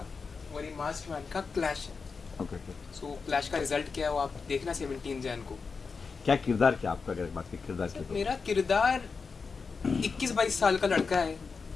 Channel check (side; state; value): right; quieter; 5.0 dB